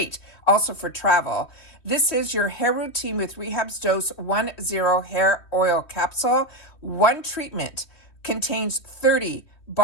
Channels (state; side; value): late; right; 3.1 ms